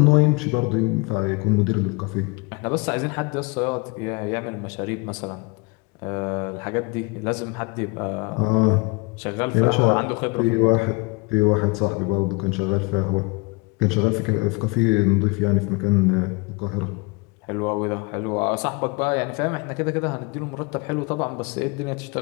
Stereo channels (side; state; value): right; quieter; 28.0 dB